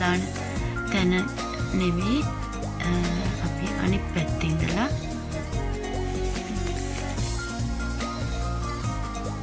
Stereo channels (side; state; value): both; identical; correlation 1.00